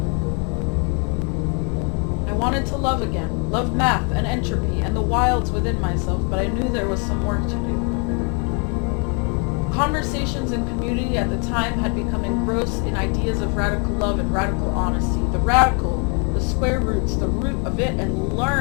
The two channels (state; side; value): quieter; right; 36.2 dB